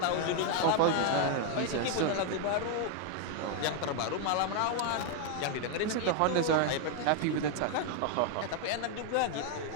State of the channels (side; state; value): both; different; correlation 0.01